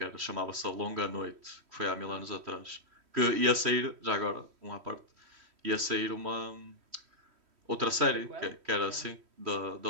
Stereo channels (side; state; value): left; late; 3.1 ms